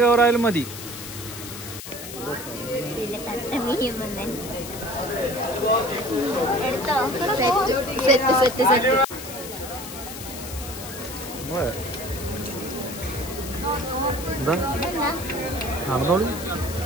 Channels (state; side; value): noise; left; hiss, 11 dB below the sound